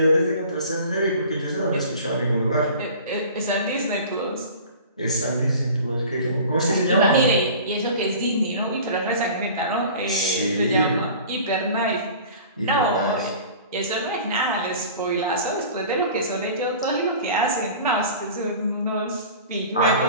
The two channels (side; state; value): both; inverted; correlation -0.42